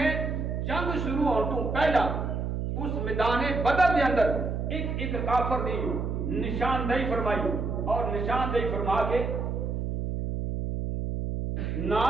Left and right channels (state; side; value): noise; right; hum, 2 dB below the sound